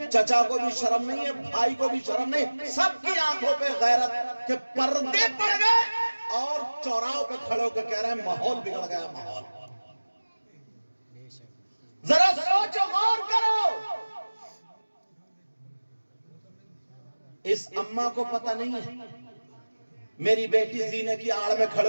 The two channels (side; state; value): both; inverted; correlation -1.00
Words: چچا کو بھی شرم نہیں ہے بھائی کو بھی شرم نہیں. سب کی آنکھوں پہ غیرت کہ پردے پڑ گئے اور چوراہوں پہ کھڑے ہو کے کہہ رہے ہیں ماحول بگڑ گیا ماحول. ذرا سوچو غور کرو. اس اماں کو پتہ نہیں ہے میری بیٹی زینے کی آڑ میں